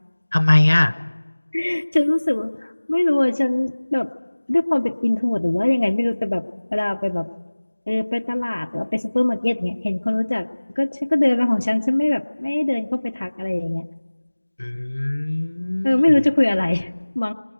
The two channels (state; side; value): inverted; both; correlation -1.00